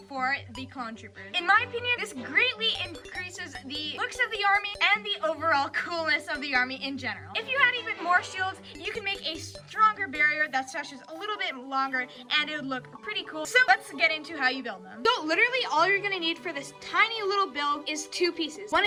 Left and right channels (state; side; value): identical; both; correlation 1.00